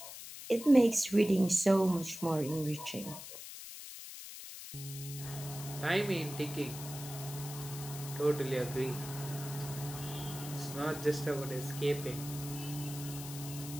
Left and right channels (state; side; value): noise; left; hiss, 11 dB below the sound